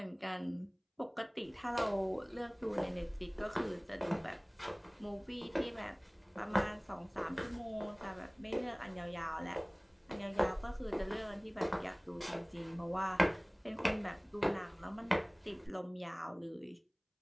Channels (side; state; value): both; identical; correlation 1.00